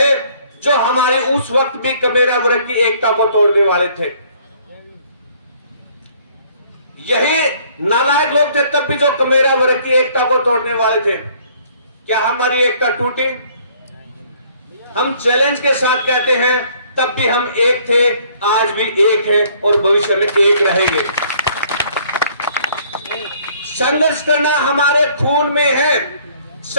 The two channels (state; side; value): inverted; both; correlation -0.60